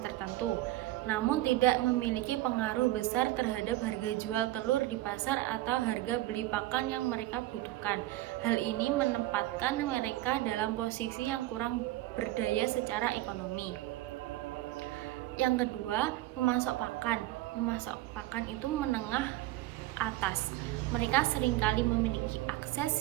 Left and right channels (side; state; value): left; quieter; 16.3 dB